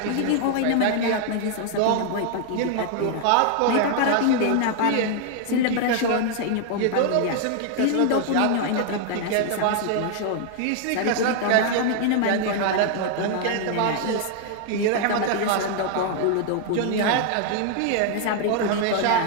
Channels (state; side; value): different; both; correlation 0.00